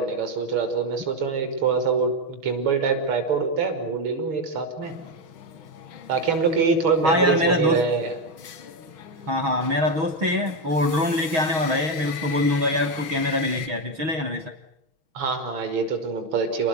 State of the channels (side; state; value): left; late; 6.2 ms